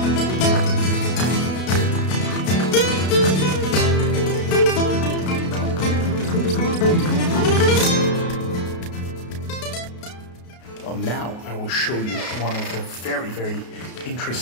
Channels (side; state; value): right; late; 33 ms